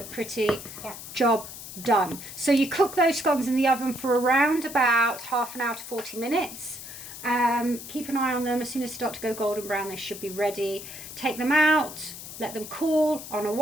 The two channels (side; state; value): left; noise; hiss, 12 dB below the sound